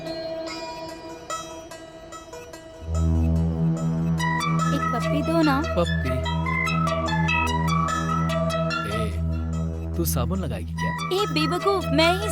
एक पप्पी दो ना। पप्पी। तू साबुन लगाएगी क्या? ए बेवकूफ, मैं ही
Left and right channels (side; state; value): both; identical; correlation 1.00